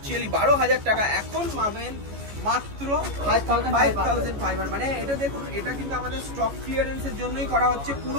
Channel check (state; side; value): late; left; 14 ms